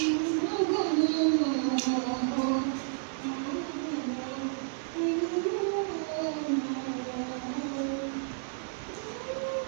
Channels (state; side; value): silent; left; digital silence